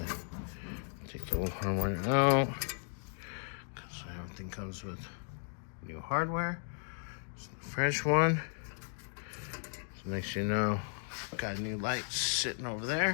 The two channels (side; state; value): right; silent; 54 dB below the other